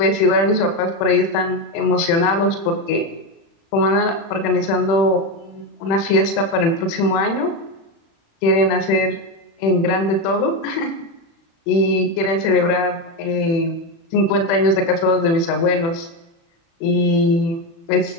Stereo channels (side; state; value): right; late; 36 ms